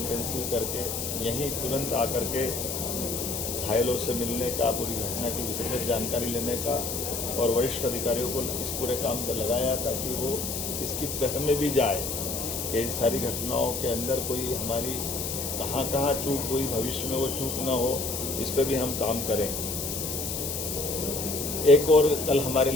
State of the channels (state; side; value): noise; left; hiss, 4 dB below the sound